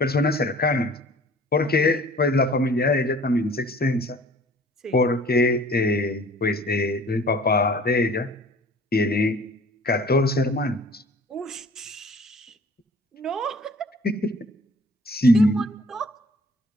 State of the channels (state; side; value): normal; both; correlation 0.50